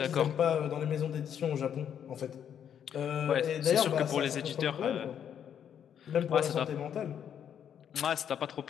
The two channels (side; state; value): right; quieter; 8.8 dB